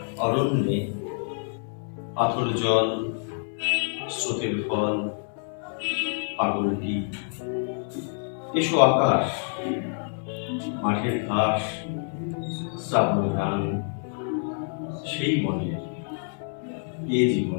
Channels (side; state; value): right; silent; 60 dB below the other